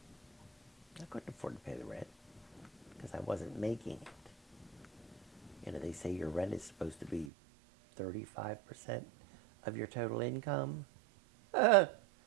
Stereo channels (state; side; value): drops out; left; at 7.3 s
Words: I couldn't afford to pay the rent because I wasn't making it. You know, they say your rent is supposed to be 35% of your total income. I